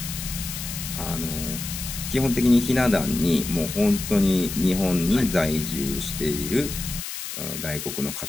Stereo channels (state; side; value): noise; left; hiss, 7 dB below the sound